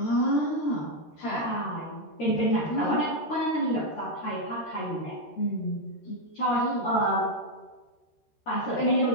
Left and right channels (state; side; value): late; right; 13 ms